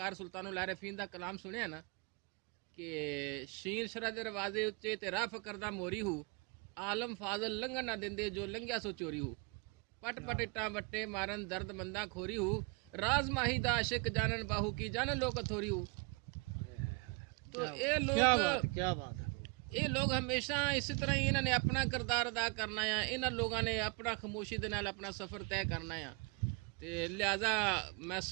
ਸੁਲਤਾਨੁਲ ਆਰਿਫੀਨ ਦਾ ਕਲਾਮ ਸੁਣਿਆ ਨਾ ਕਿ ਸ਼ੀਨ ਸ਼ਰਾ ਦੇ ਦਰਵਾਜ਼ੇ ਉੱਚੇ ਤੇ ਰਾਹ ਫਕਰ ਦਾ ਮੋਰੀ ਹੂ, ਆਲਮ ਫਾਜ਼ਲ ਲੰਘਣ ਨਾ ਦਿੰਦੇ ਜੋ ਲੰਘਿਆ ਸੋ ਚੋਰੀ ਹੋ ਪਟ ਪਟ ਇੱਟਾਂ ਵੱਟੇ ਮਾਰਨ ਦਰਦ ਮੰਦਾ ਖੋਰੀ ਹੋ ਰਾਜ਼ ਮਾਹੀ ਦਾ ਆਸ਼ਿਕ ਜਾਨਨ ਬਾਹੂ ਕੀ ਜਾਨਨ ਲੋਕ ਥੋਰੀ ਹੋ تو یہ لوگ کیا بات ہے ਇਹ ਲੋਕ ਹਮੇਸ਼ਾ ਇਸੇ ਤਰ੍ਹਾਂ ਹੀ ਇਹਨਾਂ ਨੇ ਆਪਣਾ ਕਿਰਦਾਰ ਅਦਾ ਕਰਨਾ ਆ ਇਹਨਾਂ ਲੋਕਾਂ ਨੇ ਆਪਣਾ ਖਾਮੋਸ਼ੀ ਦੇ ਨਾਲ ਆਪਣਾ ਸਫ਼ਰ ਤੈਅ ਕਰਨਾ ਆ ਤੇ ਲਿਹਾਜ਼ਾ ਮੈਂ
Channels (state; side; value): quieter; left; 30.7 dB